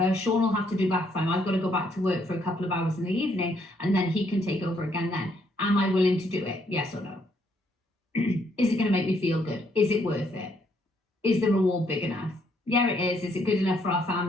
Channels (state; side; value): normal; both; correlation 0.71